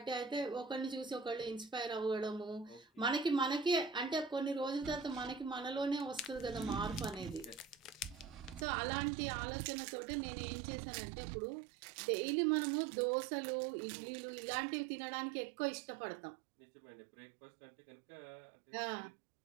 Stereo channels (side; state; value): left; drops out; at 8.7 s